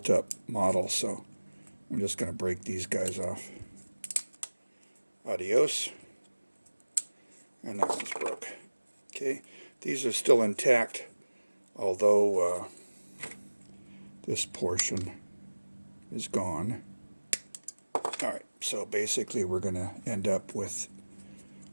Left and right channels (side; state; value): both; inverted; correlation -1.00